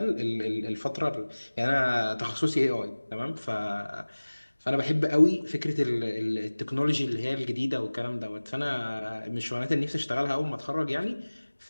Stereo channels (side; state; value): both; inverted; correlation -1.00